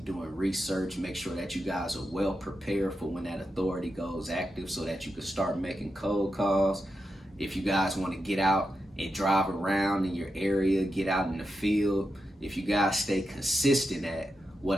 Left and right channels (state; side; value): normal; both; correlation 0.88